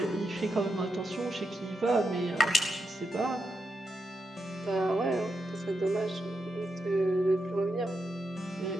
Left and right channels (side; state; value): both; normal; correlation 0.85